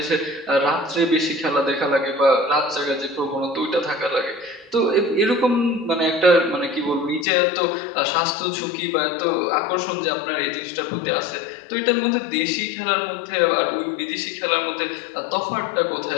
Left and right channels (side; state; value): right; drops out; at 7.2 s